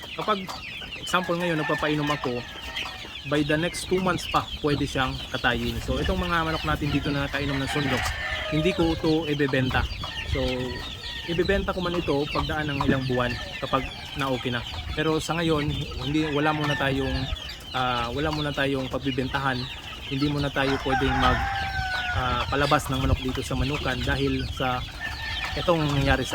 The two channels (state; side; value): identical; both; correlation 1.00